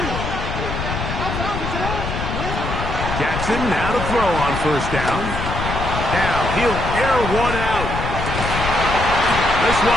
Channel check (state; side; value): noise; left; rumble, 4 dB below the sound